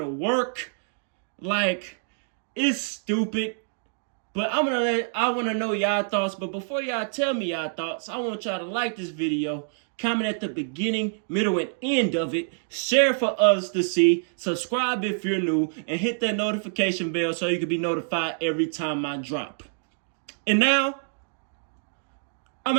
work? Like, it's stupid. But I want to know y'all thoughts. But before y'all tell me y'all thoughts, I want y'all to like this video, comment at the beginning, middle, and end of it, share for us to see, subscribe if you're new, and hit that notification bell so you can be notified every time I drop. And now, I'm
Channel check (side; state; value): left; silent; digital silence